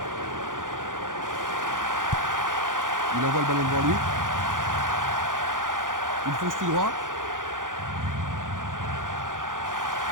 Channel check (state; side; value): late; left; 0.88 ms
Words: Il envoie le ballon devant lui. Il fonce tout droit.